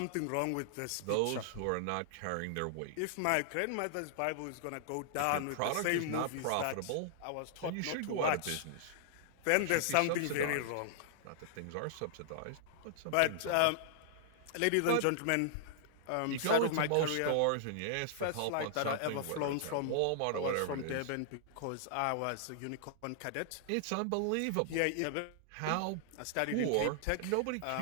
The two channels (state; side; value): different; both; correlation -0.01